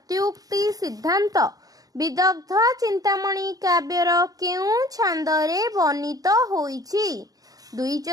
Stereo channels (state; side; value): late; left; 0.18 ms